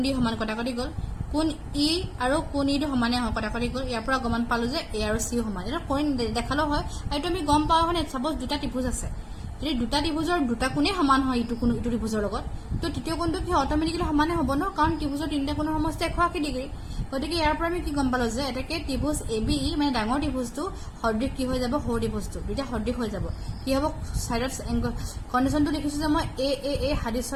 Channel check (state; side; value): identical; both; correlation 1.00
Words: D সমান কটাকটি গল কোণ E আৰু কোণ E টো সমানে হয় কটাকটি গল ইয়াৰ পৰা গমান পালো যে A আৰু C সমান এটা কৰি দেখালো হয় এইটো আমি গম পাও হয়নে সাপোজ দুটা ত্ৰিভুজ আছে যদি দুটা ত্ৰিভুজৰ দুটা কোণে সমান হয় ইটো কোণ ইটো ত্ৰিভুজৰ লগত তো তৃতীয় কোণটো কি অটোমেটিকলি সমানে হ'ব ন কাৰণ ত্ৰিভুজৰ তিনিটা কোণৰ সমষ্টি 180 ডিগ্ৰী গতিকে ইয়াৰ পৰা আমি কি গম পালো যে এটাকে ত্ৰিভুজ ABE মানে ডাঙৰ ত্ৰিভুজটো সদৃশ কি হৈ যাব সৰু ত্ৰিভুজটো দুটা সদৃশ হৈ যাব কি হ'ব সাইডত কন্ডিশনটো লিখিছো যে মই a